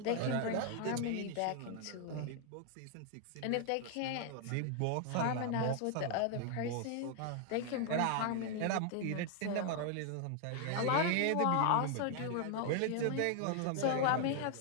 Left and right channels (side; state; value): both; different; correlation 0.00